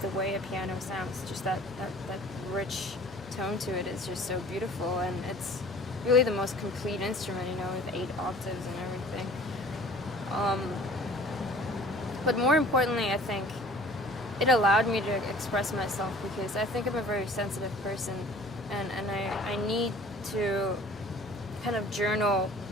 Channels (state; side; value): normal; both; correlation 0.48